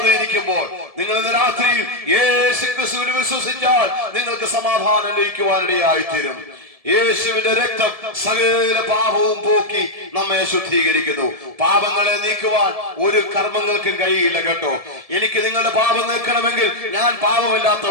ഇരിക്കുമ്പോൾ നിങ്ങൾ ഇന്ന് രാത്രിയിൽ യേശു ക്രിസ്തുവിൽ വിശ്വസിച്ചാൽ നിങ്ങൾക്ക് സമാധാനം ലഭിക്കുവാനിടയായിത്തീരും. യേശുവിന്റെ രക്തം സകല പാപവും പോക്കി നമ്മെ ശുദ്ധീകരിക്കുന്നു. പാപങ്ങളെ നീക്കുവാൻ ഒരു കർമ്മങ്ങൾക്കും കഴിയില്ല കേട്ടോ. എനിക്ക് നിങ്ങളുടെ പാപം നീക്കണമെങ്കിൽ ഞാൻ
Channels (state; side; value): late; left; 1.7 ms